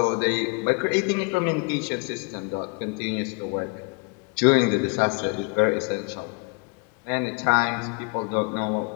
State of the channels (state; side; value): quieter; right; 33.4 dB